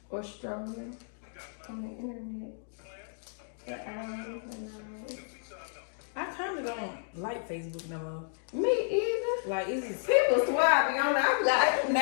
Or strolling on the internet. For hours and hours. I kinda don't like Facebook no more. Me either. Like, it's People swear I be on there. I'm like, I do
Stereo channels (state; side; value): silent; right; digital silence